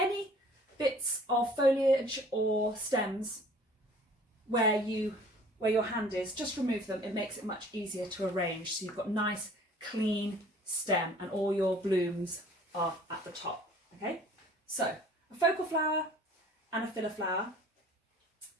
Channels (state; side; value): normal; both; correlation 0.51